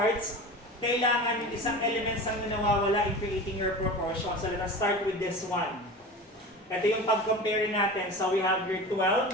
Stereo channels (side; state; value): both; normal; correlation 0.33